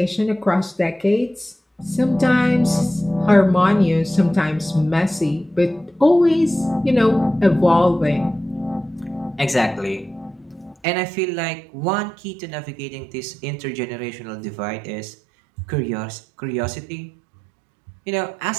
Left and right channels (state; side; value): drops out; left; at 10.8 s